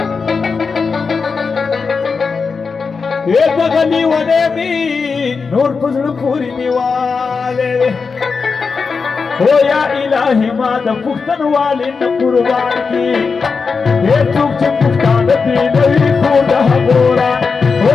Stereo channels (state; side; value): quieter; right; 5.0 dB